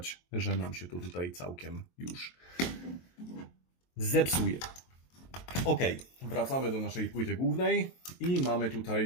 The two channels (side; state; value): right; late; 23 ms